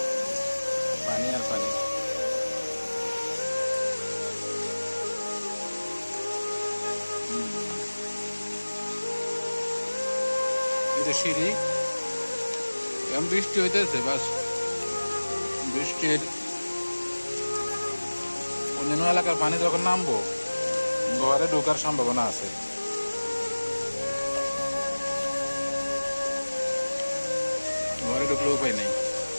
পানি আর পানি। এই যে সিঁড়ি, এখন বৃষ্টি হইতেছে, বাস বৃষ্টির অন্যান্য এলাকার পানি যখন নামবো, ঘরে ঢোকার সম্ভাবনা আছে। ঘরে ঢুকলে উপায় নেই,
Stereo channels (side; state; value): both; inverted; correlation -1.00